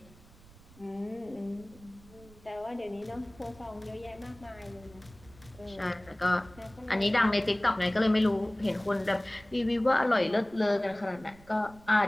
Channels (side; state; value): right; noise; rumble, 23 dB below the sound